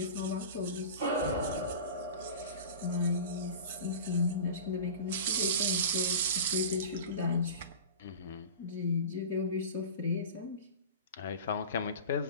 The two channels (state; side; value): inverted; both; correlation -0.34